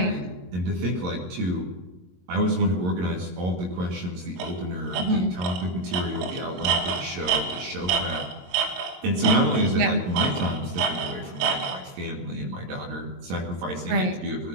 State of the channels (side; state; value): left; late; 22 ms